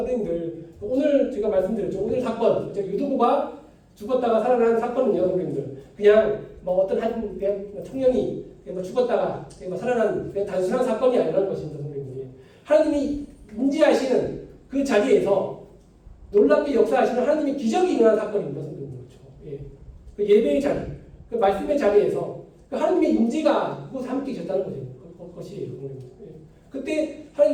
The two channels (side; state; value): both; identical; correlation 1.00